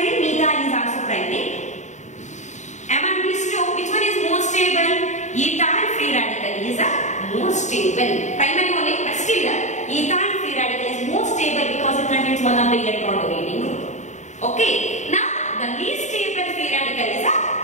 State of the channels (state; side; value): late; right; 0.34 ms